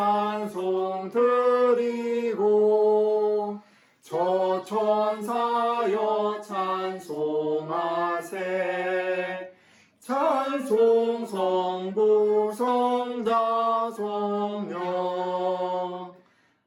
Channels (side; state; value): both; identical; correlation 1.00